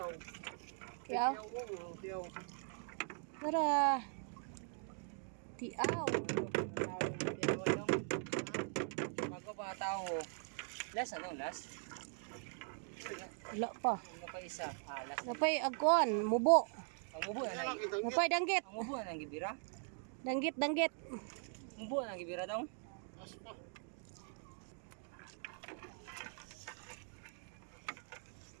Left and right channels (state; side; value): silent; left; 50 dB below the other